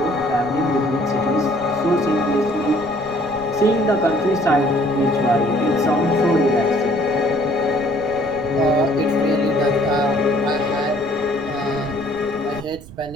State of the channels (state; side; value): noise; right; rumble, 18 dB below the sound